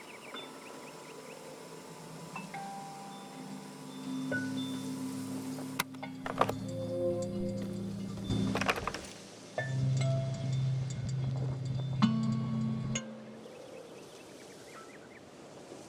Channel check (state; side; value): identical; both; correlation 1.00